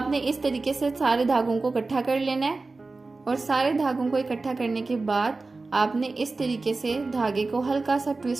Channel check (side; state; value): left; quieter; 3.6 dB